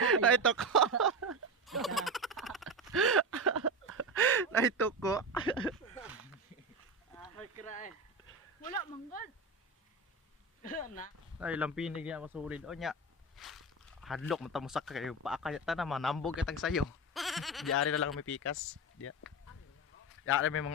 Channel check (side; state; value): both; normal; correlation 0.20